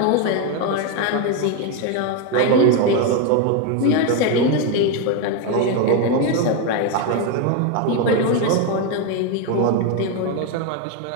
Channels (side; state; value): both; different; correlation 0.02